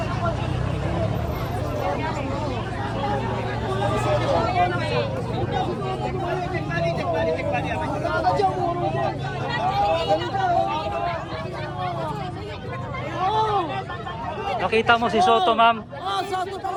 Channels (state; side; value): identical; both; correlation 1.00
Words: Nakita mo si Soto, ma'am? Oh, Soto